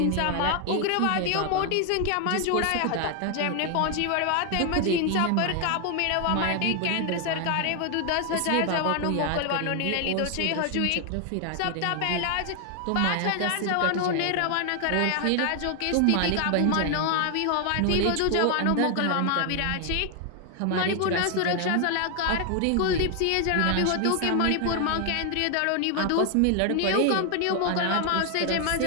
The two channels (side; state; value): both; different; correlation 0.00